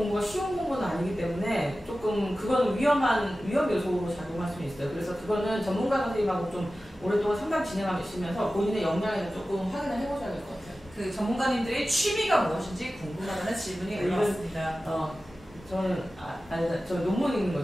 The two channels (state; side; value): normal; both; correlation 0.95